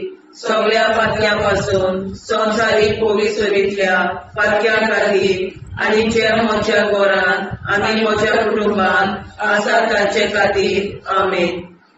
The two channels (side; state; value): both; identical; correlation 1.00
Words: सगळ्या पातक्यां पासून संवसारीक कोवीड सगळ्या पातक्यां खातीर आनी जे म्हज्या घरान आनी म्हज्या कुटुंबान आसा तांचे खातीर आमेन.